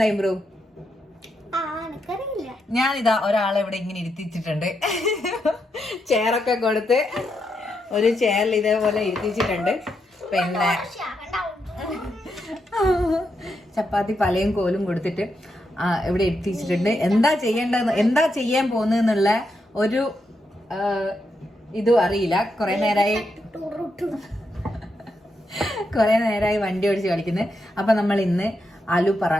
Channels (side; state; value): both; normal; correlation 0.83